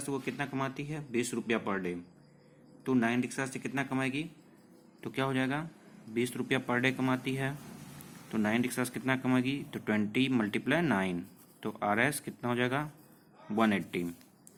से वो कितना कमाती है 20 रुपया पर डे। तो 9 रिक्शा से कितना कमाएगी, तो क्या हो जाएगा 20 रुपया पर डे कमाती है। तो 9 रिक्शा से कितना कमाएगी, तो 20 × 9, तो RS कितना हो जाएगा 180।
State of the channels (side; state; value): both; identical; correlation 1.00